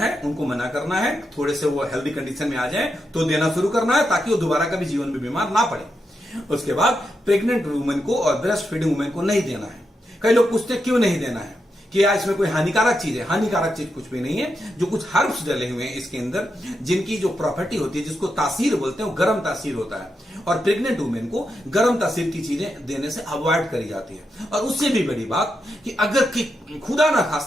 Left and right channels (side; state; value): both; normal; correlation 0.85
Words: उनको मना करना है। थोड़े से वो हेल्दी कंडीशन में आ जाए तो देना शुरू करना है, ताकि वो दोबारा कभी जीवन में बीमार ना पड़े। उसके बाद प्रेग्नेंट वुमेन को और ब्रेस्ट फीडिंग वुमेन को नहीं देना है। कई लोग पूछते हैं क्यों नहीं देना है, कि यार इसमें कोई हानिकारक चीज है। हानिकारक चीज कुछ भी नहीं है। जो कुछ हर्ब्स डले हुए हैं इसके अंदर, जिनकी जो प्रॉपर्टी होती है, जिसको तासीर बोलते हैं, वो गर्म तासीर होता है, और प्रेग्नेंट वुमेन को गर्म तासीर की चीजें देने से अवॉइड करी जाती है। और उससे भी बड़ी बात कि अगर खुदा ना